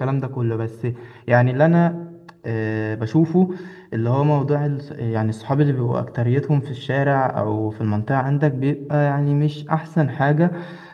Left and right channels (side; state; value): both; identical; correlation 1.00